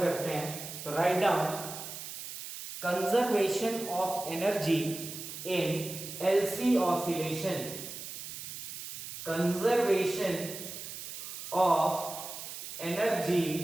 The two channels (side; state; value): right; noise; hiss, 9 dB below the sound